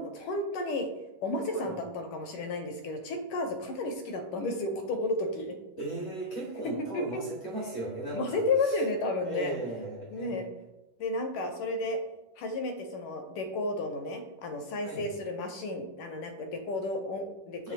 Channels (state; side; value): late; right; 11 ms